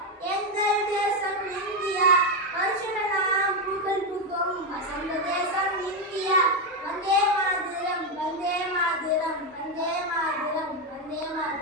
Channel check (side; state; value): both; normal; correlation 0.07